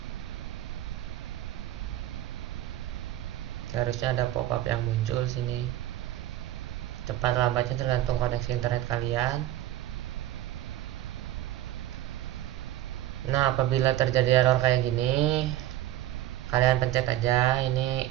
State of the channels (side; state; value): left; quieter; 13.8 dB